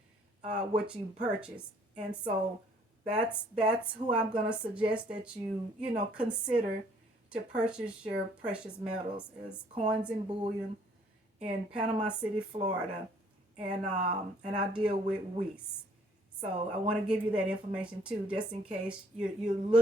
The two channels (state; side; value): normal; both; correlation 0.61